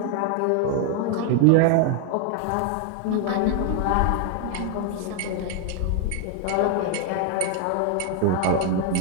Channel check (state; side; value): different; both; correlation 0.00